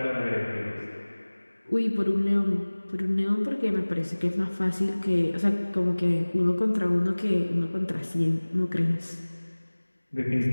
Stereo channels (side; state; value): both; inverted; correlation -1.00